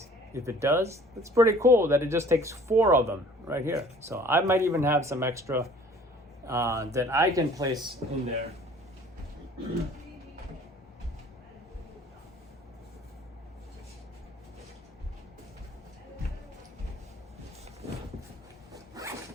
If it does, it's pretty cool that it just takes 4 of them right here. So I might even have some extra that I can place in there.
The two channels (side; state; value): both; normal; correlation 0.51